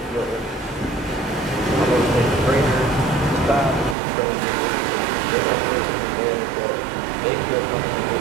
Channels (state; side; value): drops out; left; at 4.0 s